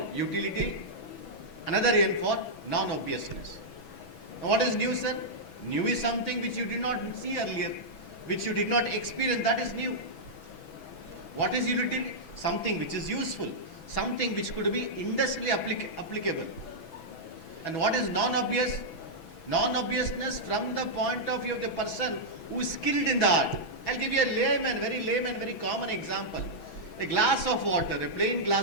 utility, another N for non-obviousness. Now, what is new, sir? New is something which you did not see earlier, which you did not experience, that is new. What is utility? Something which is useful, something which could be industrially applicable. And what is non-obvious? Non-obviousness from the point of view of the person who is skilled in the art. I'll give you a layman, very common example. A glass of water, a plain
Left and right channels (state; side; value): late; right; 6.1 ms